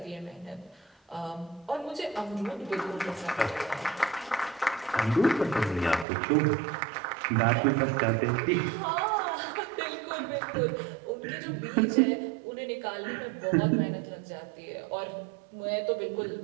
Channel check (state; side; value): drops out; left; at 6.1 s